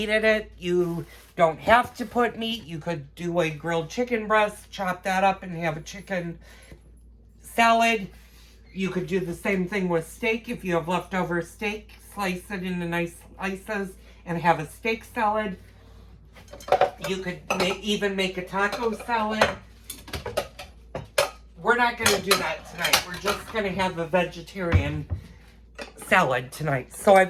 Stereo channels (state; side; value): identical; both; correlation 1.00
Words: in it. You don't have to put meat. You could do a grilled chicken breast, chop that up, and have a chicken salad. You could do the same thing with steak. If you have leftover steak, slice it into nice slices and have a steak salad. You could even make a taco salad. We're not going to do that tonight. We're just going to have a vegetarian salad tonight. So